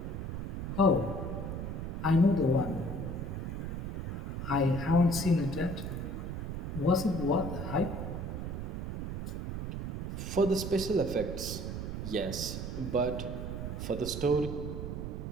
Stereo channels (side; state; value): right; noise; rumble, 4 dB below the sound